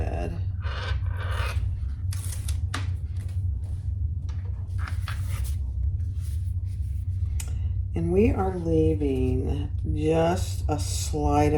And we are leaving just a slight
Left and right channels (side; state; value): both; identical; correlation 1.00